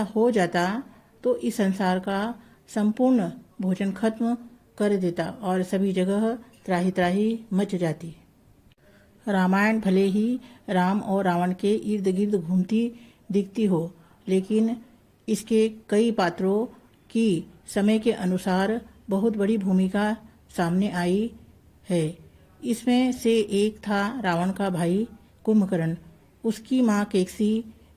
हो जाता तो इस संसार का संपूर्ण भोजन खत्म कर देता और सभी जगह त्राही त्राही मच जाती। रामायण भले ही राम और रावण के इर्द गिर्द घूमती दिखती हो, लेकिन इसके कई पात्रों की समय के अनुसार बहुत बड़ी भूमिका सामने आई है। इसमें से एक था रावण का भाई कुंभकर्ण। उसकी माँ केकसी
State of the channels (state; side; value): identical; both; correlation 1.00